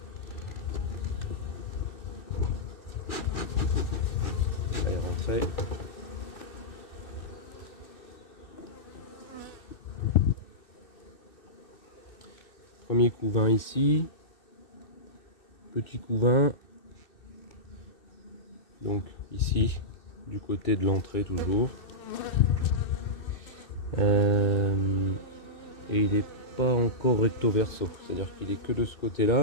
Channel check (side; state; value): right; late; 2.6 ms